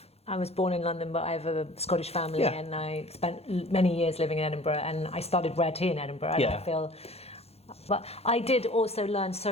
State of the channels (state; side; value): late; right; 0.30 ms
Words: was born in London, but I have a Scottish family, and I spent many years living in Edinburgh, and I studied rare tea in Edinburgh, and but I did also learn